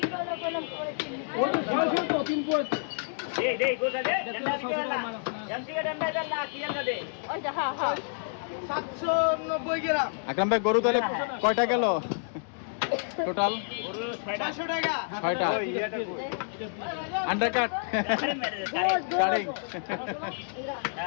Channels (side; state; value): right; silent; digital silence